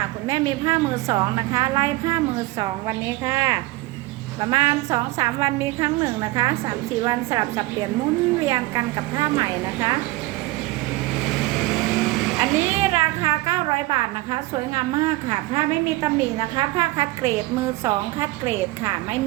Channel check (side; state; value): left; quieter; 19.8 dB